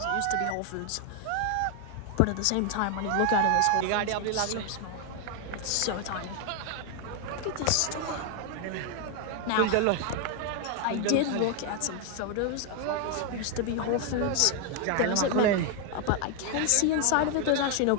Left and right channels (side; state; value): both; different; correlation 0.01